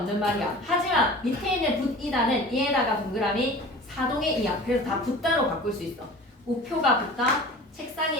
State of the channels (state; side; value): normal; both; correlation 0.40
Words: 말이야. 하지만 밑에 있는 붙이다는 이에다가 동그라미 사동의 이야. 그래서 다 붙다로 바꿀 수 있어. 우표가 붙다,